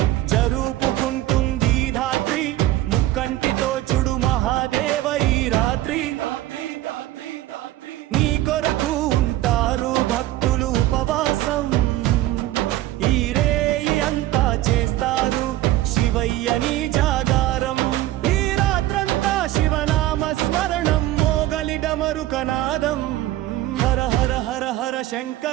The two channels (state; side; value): quieter; left; 15.3 dB